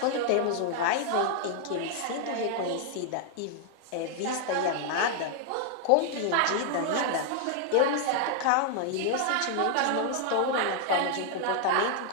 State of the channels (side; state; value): both; different; correlation 0.00